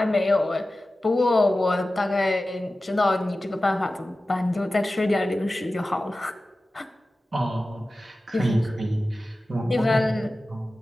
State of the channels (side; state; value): both; normal; correlation 0.95